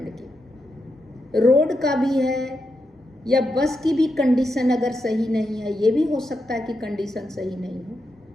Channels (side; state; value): both; normal; correlation 0.85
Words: की। रोड का भी है या बस की भी कंडीशन अगर सही नहीं है, ये भी हो सकता है कि कंडीशन सही नहीं हो।